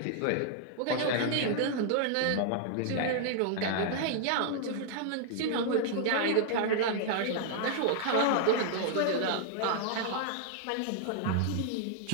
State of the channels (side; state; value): both; different; correlation 0.00